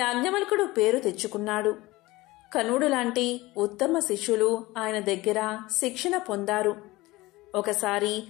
పేరు తెచ్చుకున్నాడు. కనుడు లాంటి ఉత్తమ శిష్యులు ఆయన దగ్గర శిక్షణ పొందారు. ఒకసారి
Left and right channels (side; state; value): right; quieter; 20.0 dB